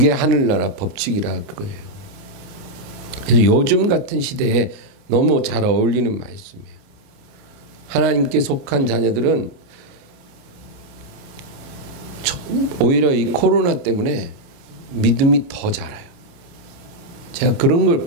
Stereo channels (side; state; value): left; late; 29 ms